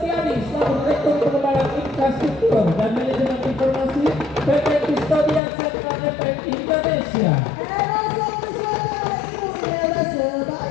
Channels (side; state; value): right; drops out; at 5.4 s